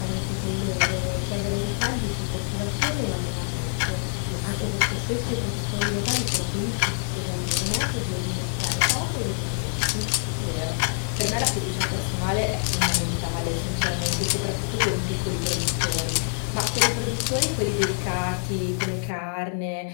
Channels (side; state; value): right; silent; digital silence